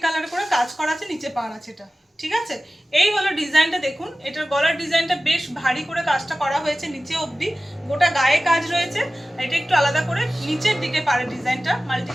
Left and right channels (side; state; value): both; normal; correlation 0.96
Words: কালার করে কাজ করা আছে, নিচে পাড় আছে এটা। ঠিক আছে, এই হলো ডিজাইনটা, দেখুন এটার গলার ডিজাইনটা বেশ ভারী করে কাজটা করা হয়েছে, নিচে অবধি গোটা গায়ে কাজ রয়েছে, এটা একটু আলাদা করে নিচের দিকে পাড়ের ডিজাইনটা মাল্টি